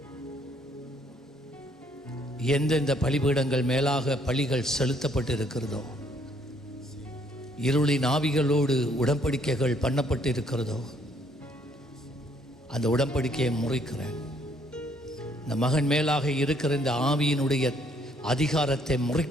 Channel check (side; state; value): both; normal; correlation 0.66